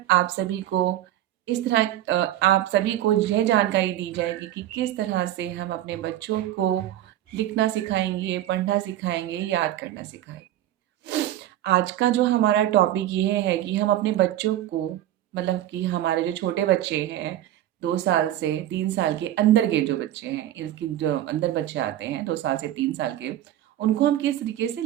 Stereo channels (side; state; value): left; quieter; 13.0 dB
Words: आप सभी को यह जानकारी दी जाएगी कि किस तरह से हम अपने बच्चों को लिखना सिखाएंगे, पढ़ना सिखाएंगे, याद करना सिखाएंगे। आज का जो हमारा टॉपिक ये है कि हम अपने बच्चों को, मतलब कि हमारे जो छोटे बच्चे हैं, 2 साल से 3 साल के अंदर के जो बच्चे हैं, इसकी जो अंदर बच्चे आते हैं 2 साल से 3 साल के, उनको हम किस तरीके से